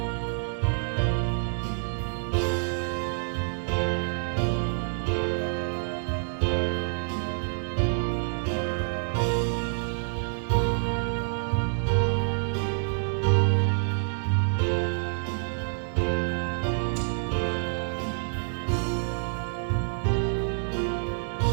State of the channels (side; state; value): left; silent; digital silence